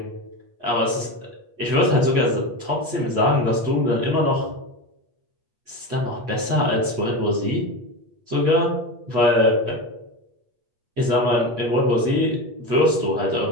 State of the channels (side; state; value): left; late; 8.4 ms